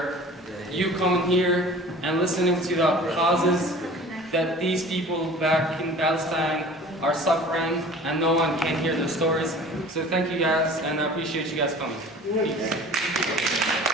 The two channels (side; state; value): both; normal; correlation 0.44